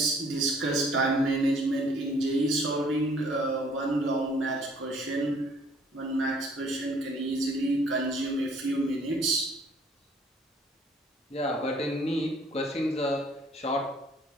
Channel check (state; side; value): normal; both; correlation 0.59